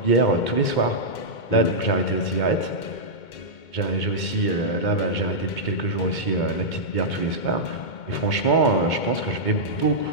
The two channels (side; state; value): right; late; 2.2 ms